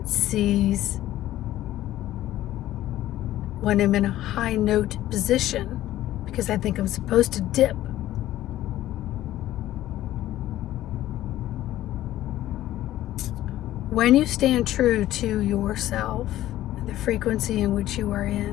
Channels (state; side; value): quieter; right; 14.2 dB